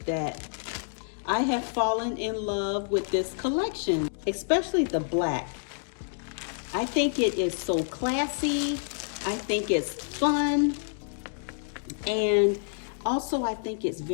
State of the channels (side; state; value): right; silent; digital silence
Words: that I have fallen in love with this collection, especially the black. I think it is so classy. I think it's fun. And also I think it's